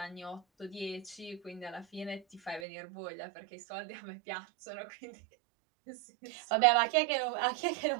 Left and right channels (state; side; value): drops out; left; at 2.7 s